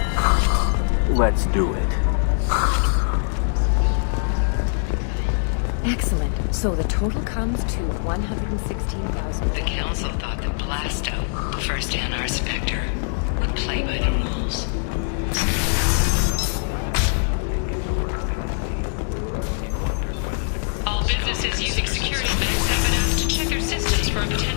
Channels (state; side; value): silent; right; 63 dB below the other